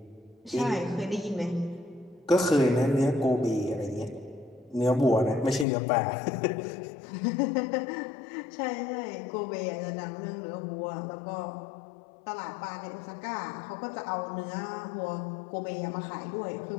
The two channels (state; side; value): drops out; right; at 5.7 s